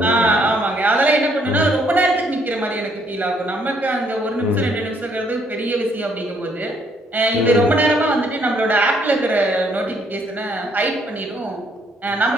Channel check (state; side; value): normal; both; correlation 0.68